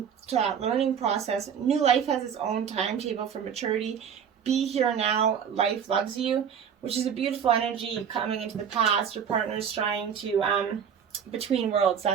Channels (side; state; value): left; quieter; 7.7 dB